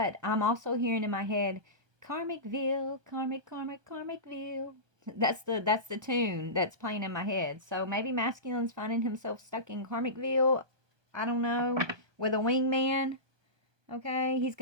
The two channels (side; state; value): left; late; 1.2 ms